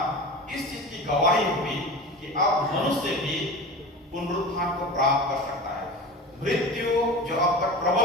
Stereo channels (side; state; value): both; normal; correlation 0.32